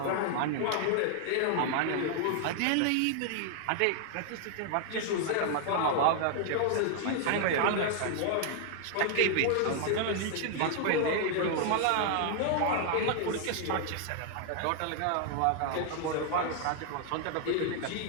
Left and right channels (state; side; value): different; both; correlation 0.00